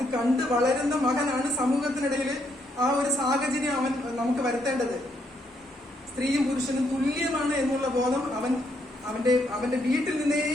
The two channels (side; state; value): both; normal; correlation 0.74